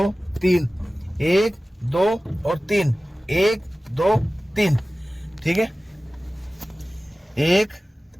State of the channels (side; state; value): both; normal; correlation 0.97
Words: 3, 1 2 और 3, 1 2 3, ठीक है, 1